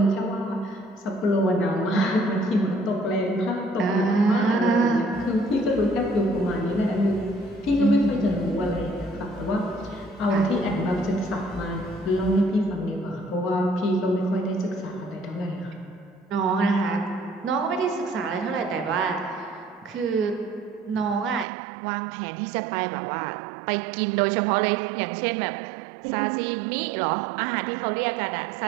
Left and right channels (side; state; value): left; drops out; at 21.5 s